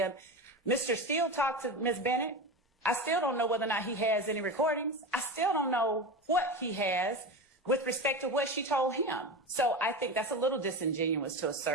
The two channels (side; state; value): both; normal; correlation 0.24